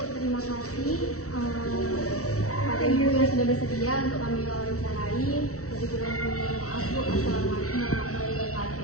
terima kasih pada Ibu yang sudah bersedia untuk kami wawancarai. Lebih kurang maaf Bu. Assalamualaikum warahmatullahi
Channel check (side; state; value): right; late; 0.64 ms